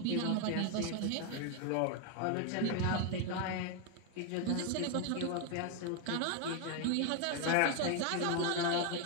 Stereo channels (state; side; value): different; both; correlation 0.01